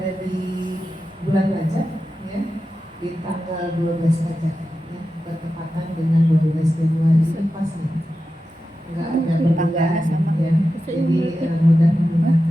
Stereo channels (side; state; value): both; normal; correlation 0.92